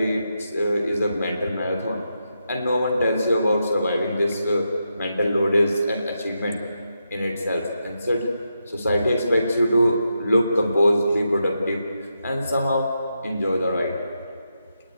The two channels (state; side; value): inverted; both; correlation -0.85